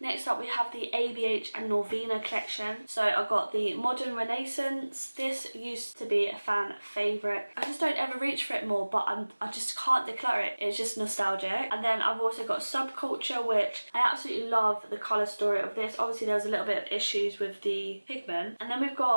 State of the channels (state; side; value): inverted; both; correlation -1.00